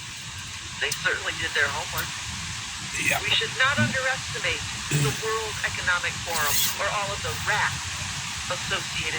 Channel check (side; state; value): both; identical; correlation 1.00